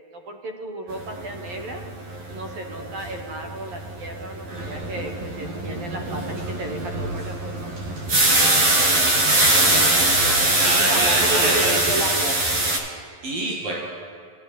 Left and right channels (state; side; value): late; left; 11 ms